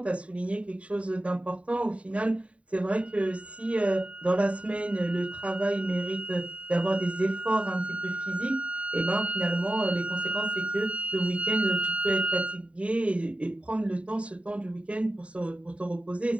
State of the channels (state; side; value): late; left; 0.064 ms